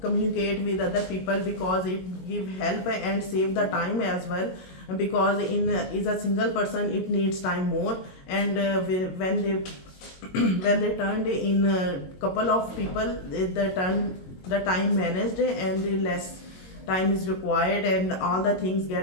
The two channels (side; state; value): right; late; 22 ms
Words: communicate with other people because it give help and save the time as well. Because is a single person, it needs time more, and when they when they turned in a couple of people, the time managed and the less time is required, and all the things